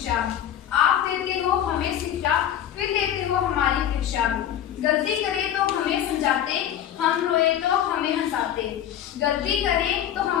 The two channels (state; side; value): quieter; right; 10.5 dB